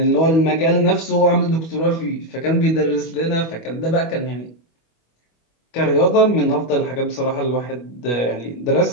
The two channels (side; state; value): right; late; 25 ms